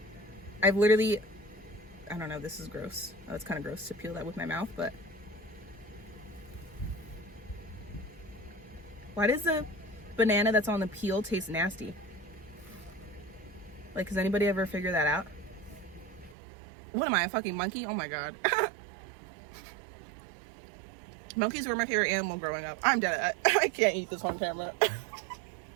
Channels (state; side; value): drops out; left; at 16.4 s